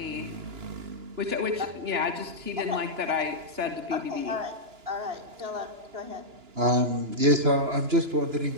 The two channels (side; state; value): left; late; 2.9 ms